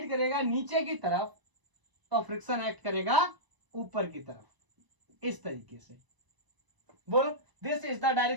करेगा नीचे की तरफ, तो फ्रिक्शन एक्ट करेगा ऊपर की तरफ, इस तरीके से। बोलो दिस इज द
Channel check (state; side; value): late; left; 1.0 ms